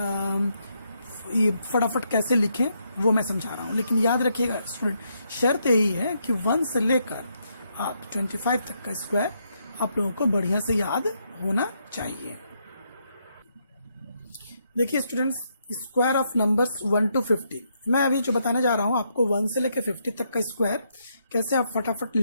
ये फटाफट कैसे लिखें वो मैं समझा रहा हूँ। लेकिन याद रखिएगा स्टूडेंट, शर्त यही है कि 1 से लेकर आप 25 तक का स्क्वायर आप लोगों को बढ़िया से याद होना चाहिए। देखिए students, square of numbers 1 to 50 मैं अभी जो बताने जा रहा हूँ आपको 1 से लेकर 50 तक का स्क्वायर कैसे आप फटाफट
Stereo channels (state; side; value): inverted; both; correlation -0.77